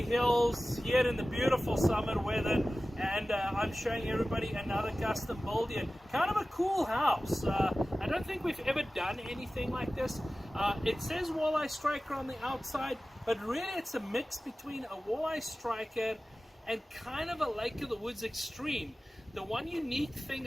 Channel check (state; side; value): normal; both; correlation 0.96